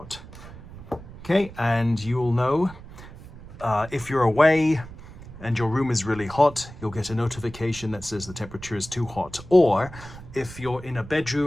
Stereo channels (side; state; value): right; noise; rumble, 16 dB below the sound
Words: Okay, and you'll know if you're away and your room is really hot, you'll get a notification that says the temperature is too hot. Or if you're in a